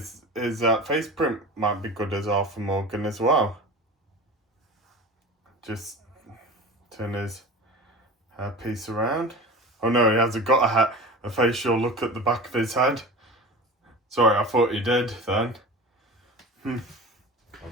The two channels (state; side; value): normal; both; correlation 0.33